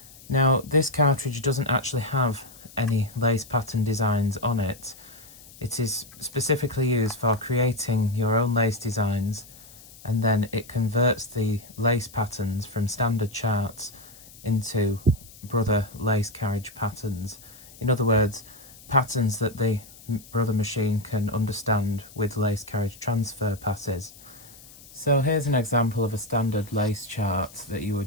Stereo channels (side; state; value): left; noise; hiss, 21 dB below the sound